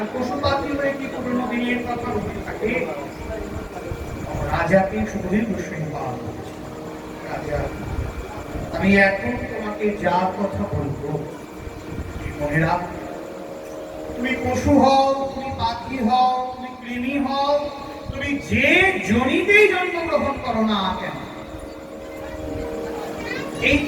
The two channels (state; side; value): identical; both; correlation 1.00